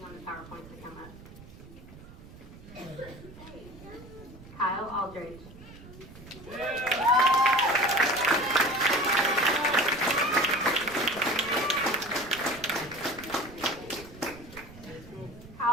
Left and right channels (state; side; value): noise; right; rumble, 18 dB below the sound